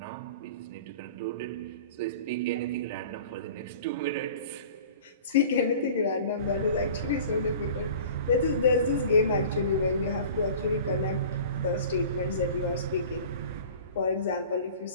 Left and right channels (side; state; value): both; inverted; correlation -0.42